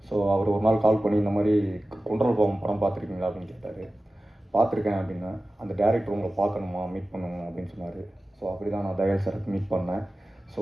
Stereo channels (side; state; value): both; normal; correlation 0.96